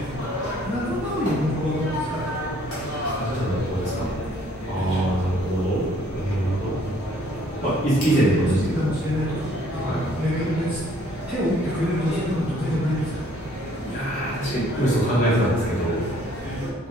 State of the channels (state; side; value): normal; both; correlation 0.60